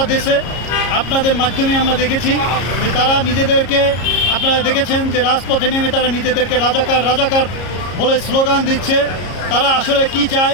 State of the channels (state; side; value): late; right; 33 ms